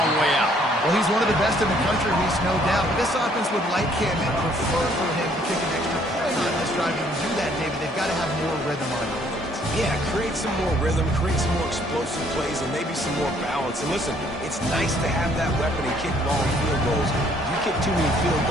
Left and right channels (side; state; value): both; normal; correlation 0.63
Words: way out. Well, he's one of the best in the country, Reese, no doubt. But this offense would like him and prefer for him to kick an extra point on this drive. And to do that, David, they've got to have more rhythm on it. Yeah, create some more rhythm, create some more explosive plays, and maybe some more balance. And listen, it's nice to have that weapon and kick long field goals. If you kick too many field